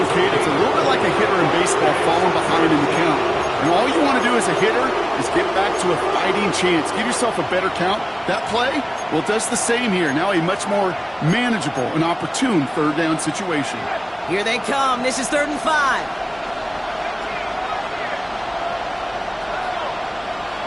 Kate, it's a little bit like a hitter in baseball falling behind in the count. And all you want to do as a hitter is get back to a fighting chance. Give yourself a better count. That play, well, it does the same here. Now a much more manageable and opportune 3rd down situation. Here they come. This is 3rd and 5.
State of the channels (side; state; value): both; identical; correlation 1.00